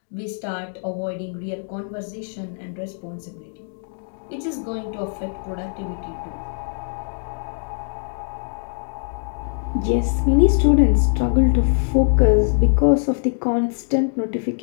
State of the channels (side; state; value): right; silent; digital silence